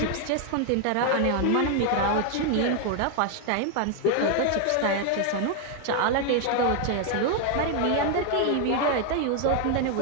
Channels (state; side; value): different; both; correlation 0.00